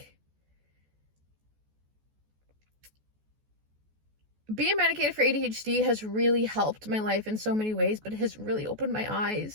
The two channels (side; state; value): left; late; 14 ms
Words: being medicated for ADHD has really helped my life in so many ways, but it has really opened my